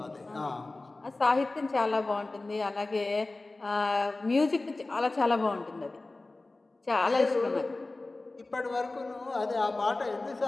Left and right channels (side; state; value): right; quieter; 3.1 dB